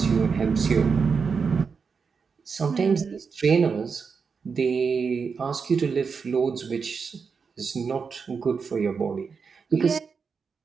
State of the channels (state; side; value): quieter; left; 5.5 dB